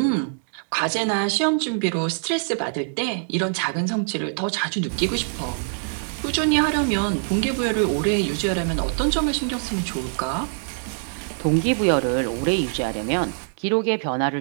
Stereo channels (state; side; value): silent; left; digital silence